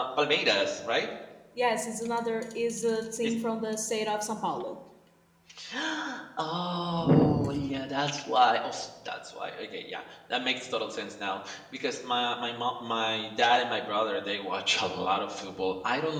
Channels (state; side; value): identical; both; correlation 1.00